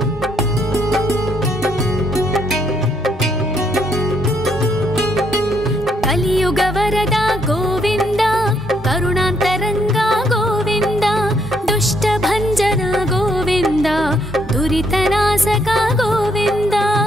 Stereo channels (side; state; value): both; normal; correlation 0.72